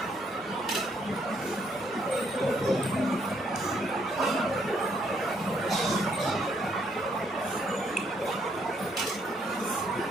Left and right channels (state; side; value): normal; both; correlation 0.71